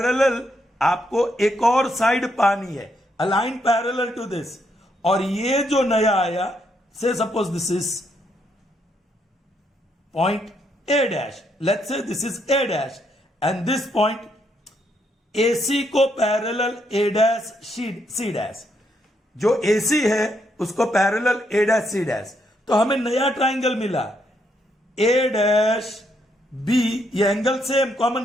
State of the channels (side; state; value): both; normal; correlation 0.76